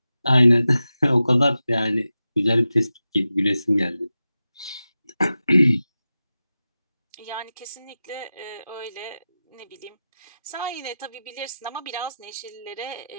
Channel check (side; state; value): both; inverted; correlation -0.93